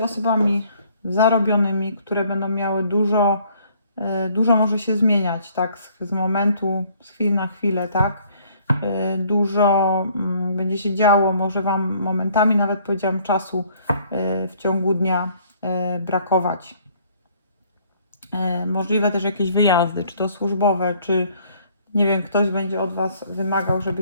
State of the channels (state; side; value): inverted; both; correlation -0.61